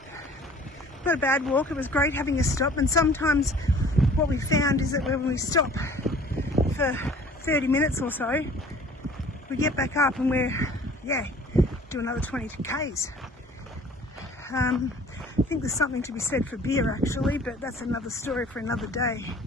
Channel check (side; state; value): both; normal; correlation 0.50